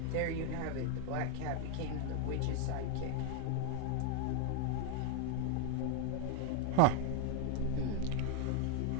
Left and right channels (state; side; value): different; both; correlation 0.01